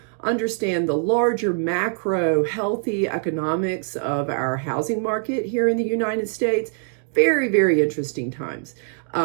understand the larger macro healthy economics of our housing market here in the United States. Very, very interesting times.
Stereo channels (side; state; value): left; silent; 63 dB below the other